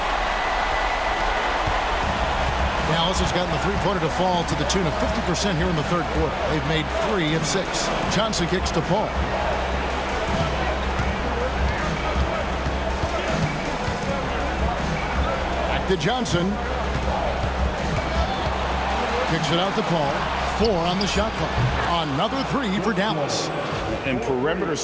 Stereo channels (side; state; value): both; identical; correlation 1.00